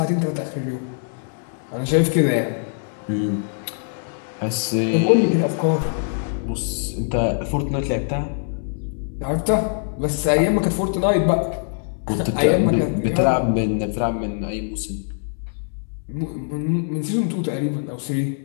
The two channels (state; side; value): silent; right; digital silence